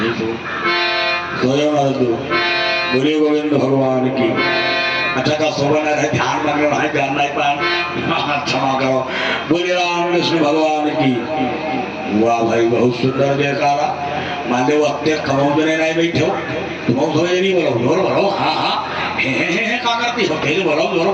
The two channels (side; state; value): both; identical; correlation 1.00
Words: बोले गोविंद भगवान की। अच्छा का शोभन है, ध्यान लग रहा है, जानना ही पाए, क्षमा करो। बोले राम कृष्ण भगवान की। वाह भाई बहुत सुंदर जयकारा। मान लो अपने खमोदने नहीं बैठे हो, तुम समझ नहीं, बोलो जोर बोलो, हाँ हाँ हे क्या करती हो, फिर बोलो जोर